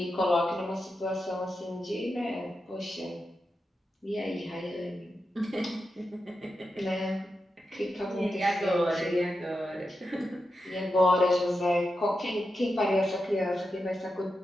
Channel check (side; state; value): both; normal; correlation 0.89